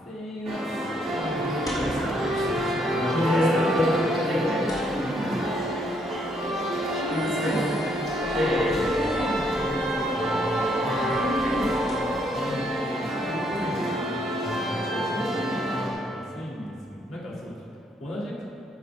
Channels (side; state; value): both; normal; correlation 0.71